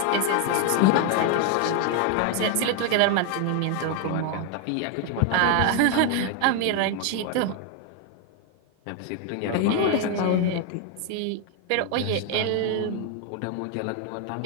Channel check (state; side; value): different; both; correlation 0.01